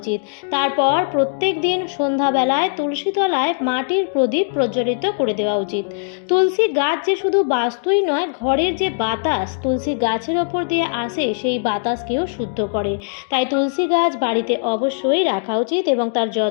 তারপর প্রত্যেক দিন সন্ধ্যাবেলায় তুলসী তলায় মাটির প্রদীপ প্রজ্বলিত করে দেওয়া উচিত। তুলসী গাছ যে শুধু বাস্তুই নয়, ঘরের যে বাতাস তুলসী গাছের ওপর দিয়ে আসে সেই বাতাসকেও শুদ্ধ করে। তাই তুলসী গাছ বাড়িতে অবশ্যই রাখা উচিত এবং তার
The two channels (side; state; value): right; silent; digital silence